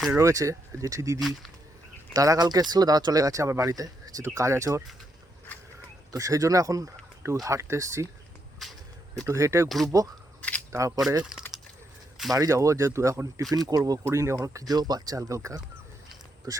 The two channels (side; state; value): both; normal; correlation 0.79